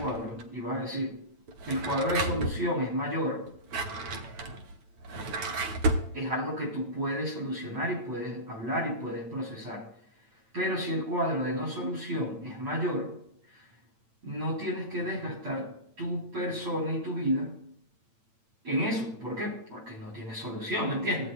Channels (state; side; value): late; left; 8.9 ms